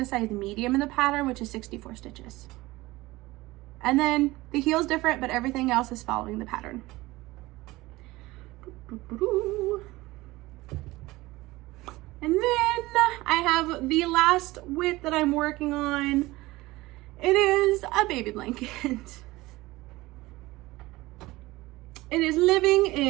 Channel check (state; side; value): quieter; left; 19.6 dB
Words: size medium in the pattern, which is 64 stitches. And then the heel's different, but everything else is following the pattern. And then I have the last whip that I'm working on. It is a baby blanket. It is living